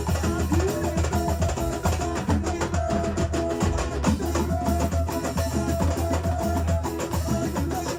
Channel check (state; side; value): identical; both; correlation 1.00